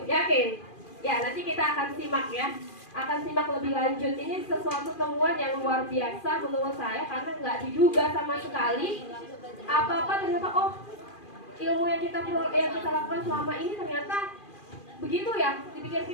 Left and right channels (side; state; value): right; late; 2.4 ms